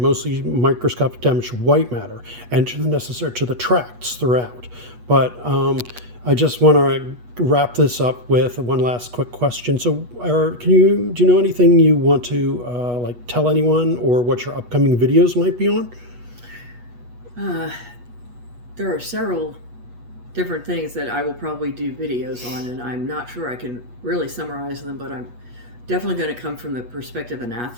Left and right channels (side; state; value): left; late; 8.3 ms